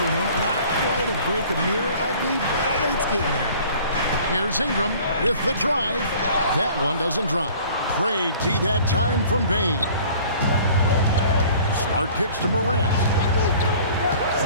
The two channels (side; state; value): both; inverted; correlation -0.50